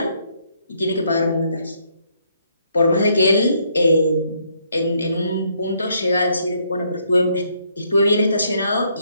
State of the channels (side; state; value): both; inverted; correlation -0.71